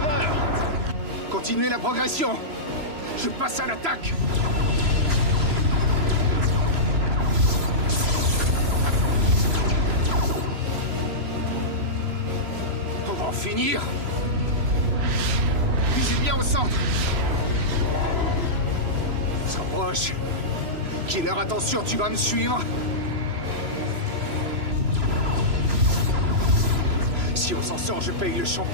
Continuez la progression. Je passe à l'attaque. On va en finir. Visez bien au centre. On se rapproche. Killer, attention, tu vas me suivre. Si on s'en sort, je paye le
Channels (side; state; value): left; late; 3.0 ms